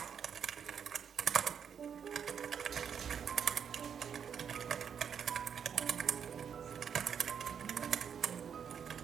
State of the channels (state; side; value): quieter; left; 7.6 dB